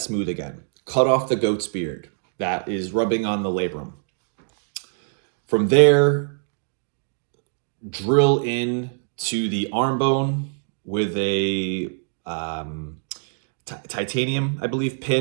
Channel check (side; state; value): left; silent; digital silence